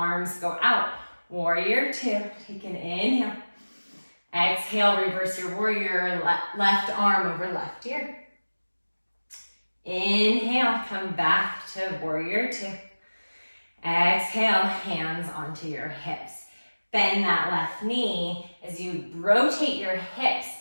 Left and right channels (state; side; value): inverted; both; correlation -1.00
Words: go out. Warrior two, take an inhale. Exhale, reverse your warrior, left arm over left ear. Inhale, come back to warrior two. Exhale, hands onto your hips. Bend that left knee as you rotate your hips